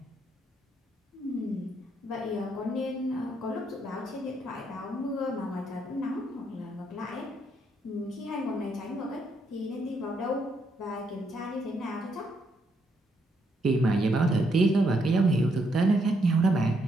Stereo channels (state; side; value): normal; both; correlation 0.75